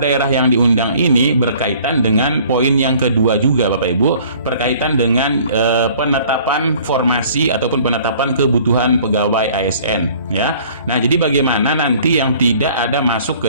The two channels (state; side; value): inverted; both; correlation -0.53